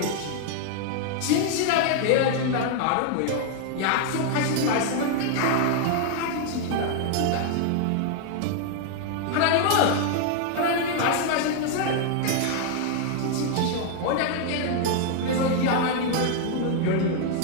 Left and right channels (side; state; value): both; different; correlation 0.00